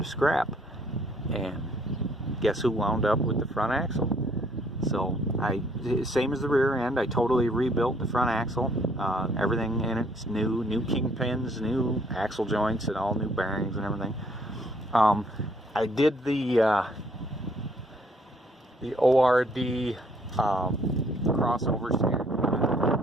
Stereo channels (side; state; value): both; normal; correlation 0.65